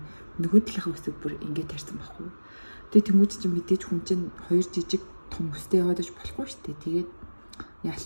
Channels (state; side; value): inverted; both; correlation -1.00